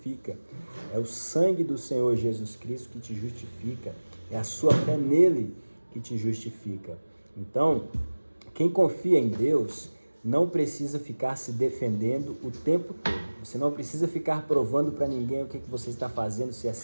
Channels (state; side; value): inverted; both; correlation -1.00